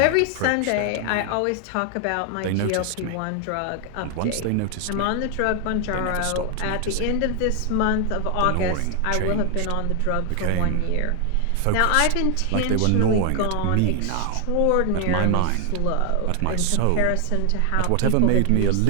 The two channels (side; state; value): both; different; correlation 0.00